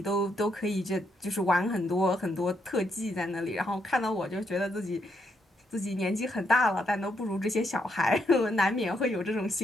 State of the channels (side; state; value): both; normal; correlation 0.77